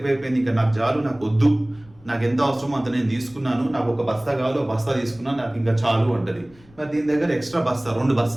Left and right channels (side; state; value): left; noise; rumble, 27 dB below the sound